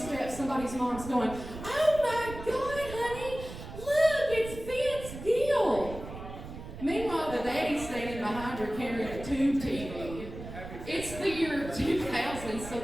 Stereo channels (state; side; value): noise; right; rumble, 11 dB below the sound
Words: somebody's mom's going, "Oh my God, honey, look, it's Vince Gill." Meanwhile, the daddy's standing behind her carrying a tube TV. It's the year 2000, so